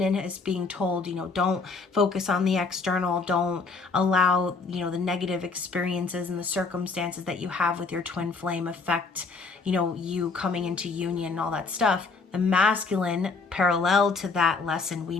is being told, don't focus on the external, don't allow, the negative experiences and the circumstances that you have with your twin flame affect, you coming into union and all that stuff. The masculine, parallel to that lesson we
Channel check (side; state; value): right; quieter; 4.3 dB